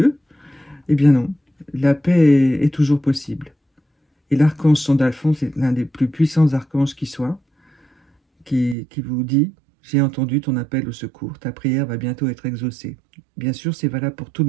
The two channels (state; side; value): drops out; left; at 8.8 s